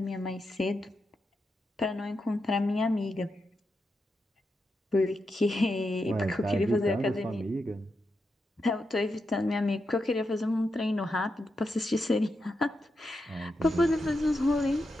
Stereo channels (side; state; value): both; normal; correlation 0.86